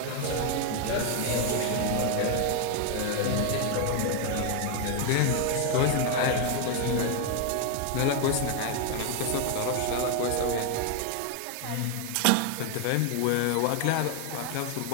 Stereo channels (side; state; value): both; different; correlation 0.01